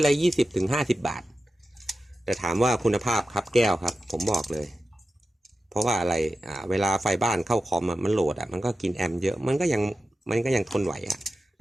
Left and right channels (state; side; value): normal; both; correlation 0.92